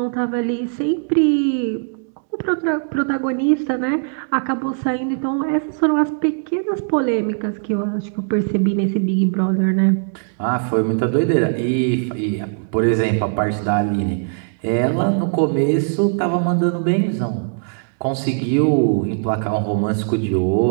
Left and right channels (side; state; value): left; silent; digital silence